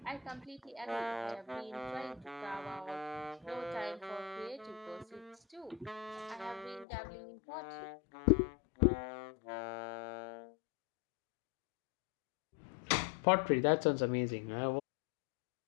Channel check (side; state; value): right; drops out; at 6.9 s